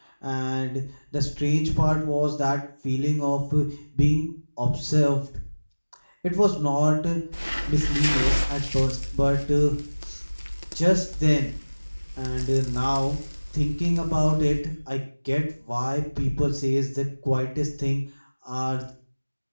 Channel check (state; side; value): inverted; both; correlation -1.00